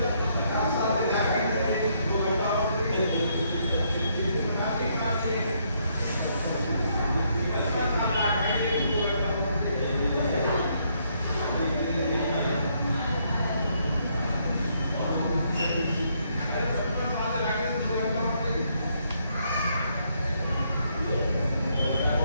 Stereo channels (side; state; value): both; inverted; correlation -0.73